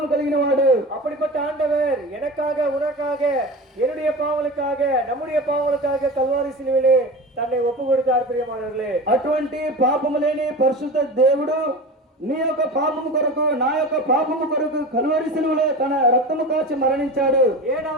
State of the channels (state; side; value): normal; both; correlation 0.30